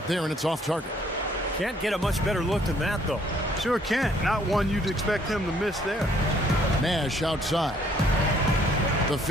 there, and it's off target. Can't get a much better look than that, though. Sure can't. Not one you'd expect him to miss there. Nash outside. The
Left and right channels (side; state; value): both; normal; correlation 0.63